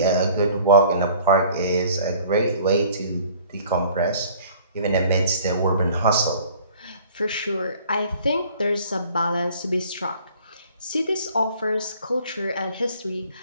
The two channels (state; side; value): inverted; both; correlation -0.52